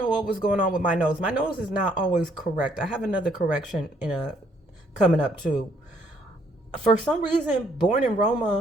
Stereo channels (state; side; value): normal; both; correlation 0.67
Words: what was going on with my nose. My nose is not always correct. I have another correction coming up too. For some reason, Born in